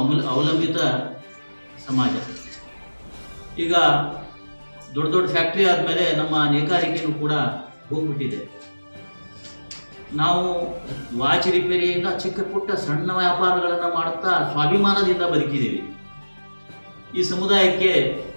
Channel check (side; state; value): both; inverted; correlation -1.00